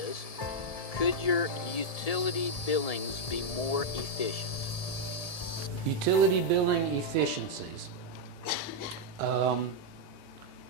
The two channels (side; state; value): right; late; 1.7 ms